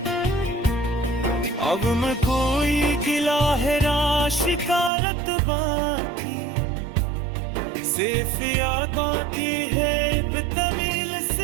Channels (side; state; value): left; drops out; at 4.9 s